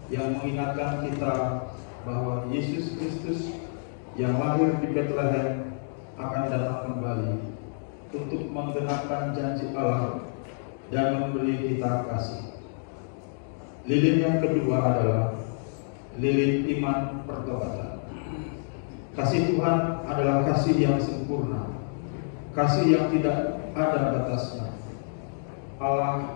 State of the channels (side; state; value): right; silent; digital silence